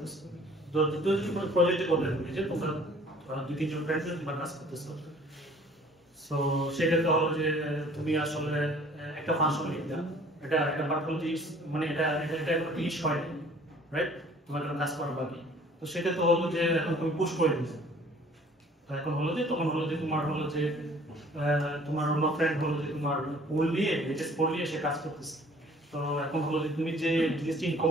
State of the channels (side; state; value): both; normal; correlation 0.53